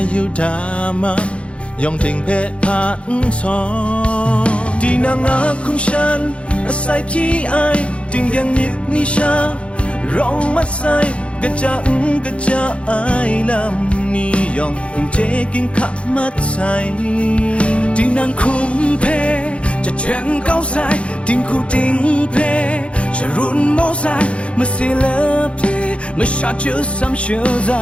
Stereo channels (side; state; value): right; late; 0.060 ms